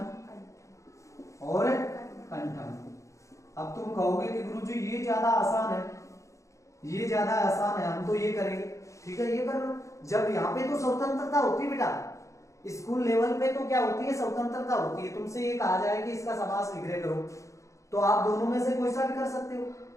और कंठम। अब तुम कहोगे कि गुरुजी ये ज्यादा आसान है, ये ज्यादा आसान है, हम तो ये करेंगे। ठीक है, ये कर लो। जब यहाँ पे तो स्वतंत्रता होती है बेटा, स्कूल लेवल पे तो क्या होती है? स्वतंत्रता होती है। तुमसे ये कहा जाए कि इसका समास विग्रह करो तो आप दोनों में से कोई सा भी कर सकते हो।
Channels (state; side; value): late; right; 0.15 ms